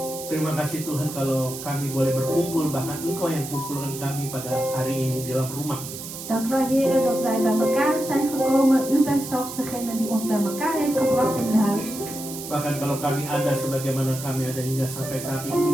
Terima kasih Tuhan kalau kami boleh berkumpul, bahkan Engkau yang kumpulkan kami pada hari ini di dalam rumah. Dank u wel, Heer, dat wij bij elkaar zijn gekomen. U bent zelfs degene die ons bij elkaar heeft gebracht in uw huis. Bahkan kalau kami ada sebagaimana kami ada hingga sampai saat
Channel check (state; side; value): noise; right; hiss, 10 dB below the sound